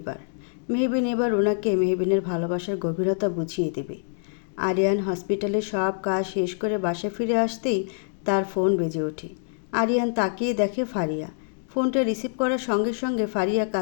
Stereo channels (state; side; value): silent; right; digital silence